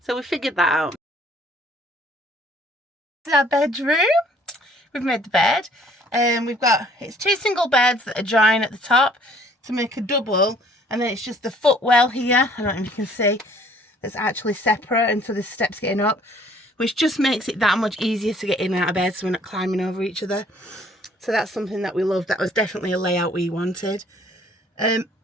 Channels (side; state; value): both; normal; correlation 0.58